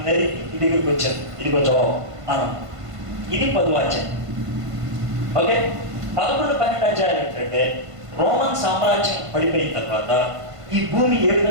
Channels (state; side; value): late; left; 1.5 ms